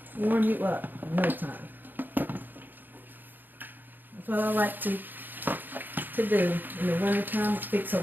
warm you up in no time. That's what I like to do in the wintertime. Fix a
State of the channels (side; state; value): left; late; 0.090 ms